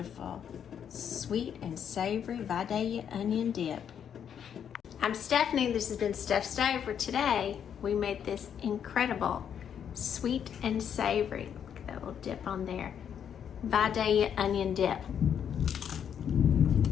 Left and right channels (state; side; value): quieter; right; 8.5 dB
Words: sweet and savory Vidalia Onion Dip. I'm Stephanie. This has been Steph Stove. For today, we made this incredible sweet and savory. Look at that little dip on there. Vidalia Onion Dip.